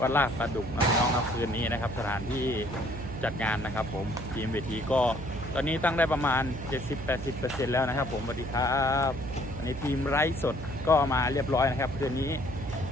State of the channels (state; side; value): noise; right; hum, 10 dB below the sound